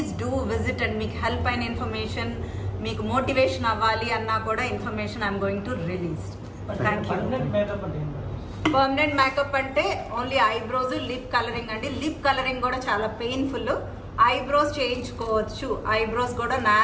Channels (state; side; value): identical; both; correlation 1.00